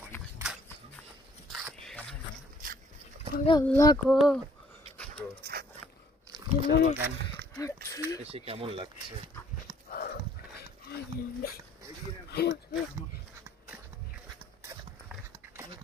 আল্লাহ গো, এসে কেমন লাগছে?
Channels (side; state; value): both; normal; correlation 0.61